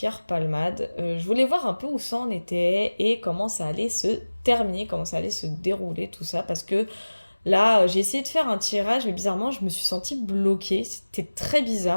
Palmade. Je voulais voir un peu où ça en était et comment ça allait se terminer, comment ça allait se dérouler, tout ça. Parce que là, j'ai essayé de faire un tirage, mais bizarrement, je me suis sentie bloquée. C'était très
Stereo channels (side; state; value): both; inverted; correlation -1.00